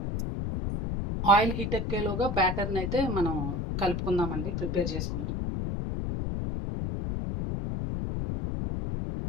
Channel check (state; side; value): noise; left; rumble, 2 dB below the sound